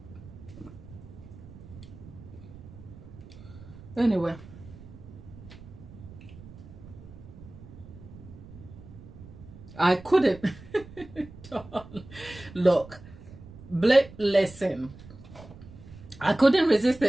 Anyway. I couldn't. Look. Listen. I couldn't resist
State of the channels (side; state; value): right; noise; rumble, 17 dB below the sound